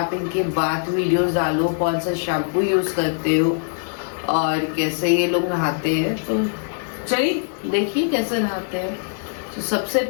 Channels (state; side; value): silent; right; 64 dB below the other